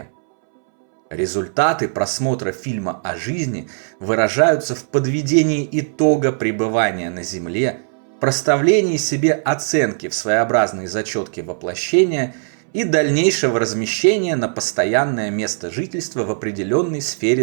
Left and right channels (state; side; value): silent; left; 64 dB below the other